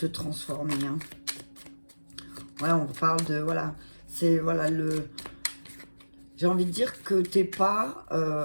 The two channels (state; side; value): inverted; both; correlation -1.00